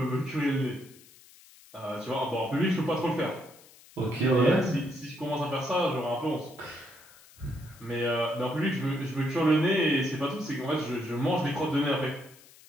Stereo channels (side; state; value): left; noise; hiss, 24 dB below the sound